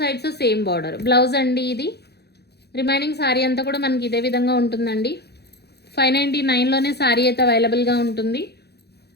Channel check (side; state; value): right; late; 0.48 ms